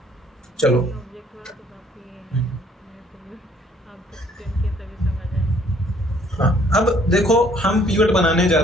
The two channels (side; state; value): both; normal; correlation 0.61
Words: चलो ये ऑब्जेक्ट वाला तो काफी है, मेरे को भी आपको एक्सप्लेन किया तभी समझ आया। हाँ, अब देखो हम पिवट बनाने जा